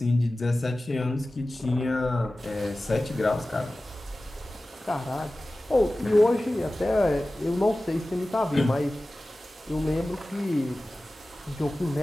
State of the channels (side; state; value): both; normal; correlation 0.96